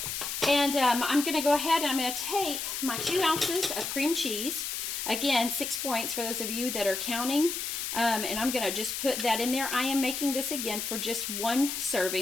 And I'm going to go ahead and I'm going to take my 2 ounces of cream cheese. Again, 6 points for those of you that are counting. And I'm going to just put that in there. I am making this again for just 1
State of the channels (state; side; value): noise; left; hiss, 4 dB below the sound